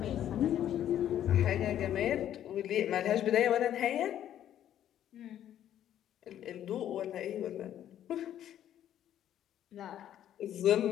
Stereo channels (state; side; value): quieter; right; 11.0 dB